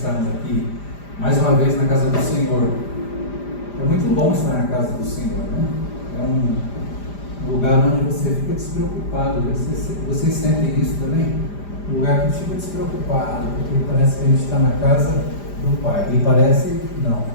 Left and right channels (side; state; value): right; late; 5.0 ms